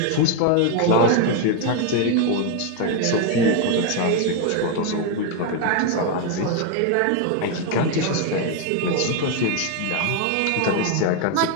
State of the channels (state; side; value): different; both; correlation 0.01